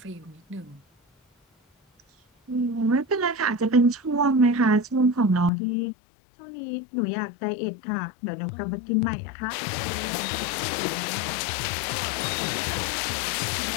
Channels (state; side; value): drops out; right; at 5.5 s